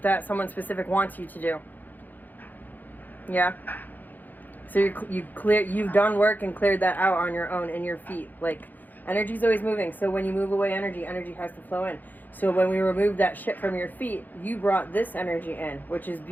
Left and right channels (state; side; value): late; right; 0.085 ms